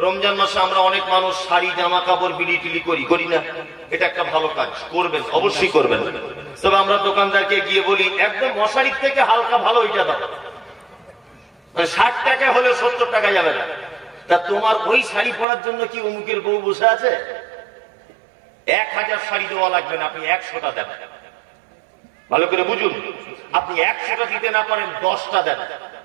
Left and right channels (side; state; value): left; drops out; at 15.5 s